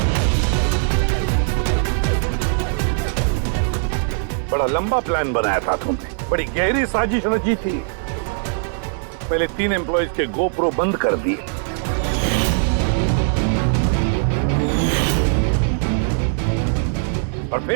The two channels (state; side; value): silent; left; digital silence